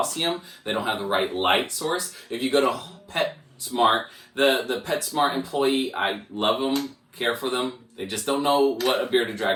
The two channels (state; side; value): identical; both; correlation 1.00